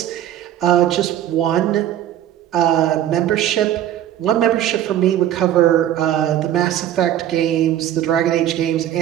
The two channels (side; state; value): left; quieter; 11.6 dB